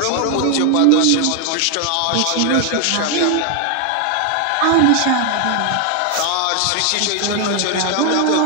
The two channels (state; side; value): different; both; correlation 0.00